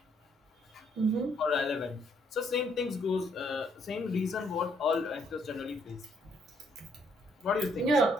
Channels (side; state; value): both; normal; correlation 0.69